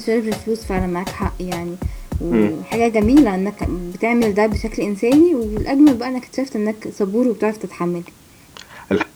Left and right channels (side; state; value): both; identical; correlation 1.00